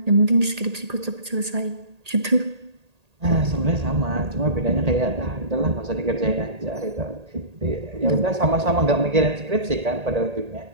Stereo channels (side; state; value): left; late; 1.8 ms